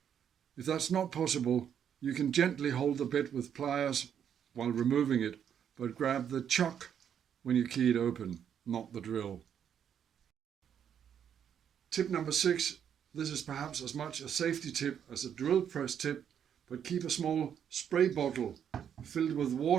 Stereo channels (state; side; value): quieter; left; 8.6 dB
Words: If that's not possible, you can gently hold the bit with pliers while removing it, but grab the chuck when you key it open, not the drill. Tip number 6. This is perhaps as much a safety tip as a drill press tip, but keep a small spray bottle filled with